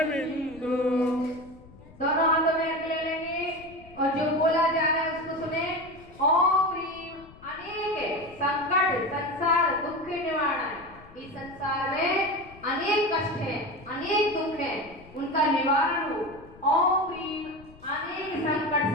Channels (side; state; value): left; noise; rumble, 22 dB below the sound